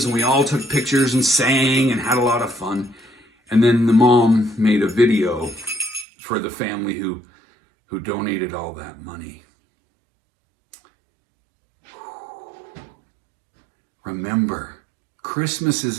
and we all took pictures and sang and had a lot of fun. And then the mom made a video for the family who donated all that money. Remember, Christmas is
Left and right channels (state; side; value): drops out; left; at 6.1 s